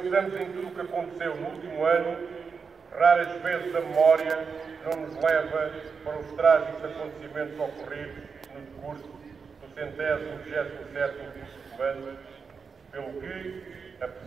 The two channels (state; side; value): quieter; left; 5.5 dB